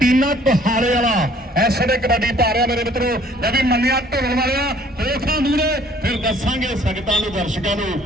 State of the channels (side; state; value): both; normal; correlation 0.57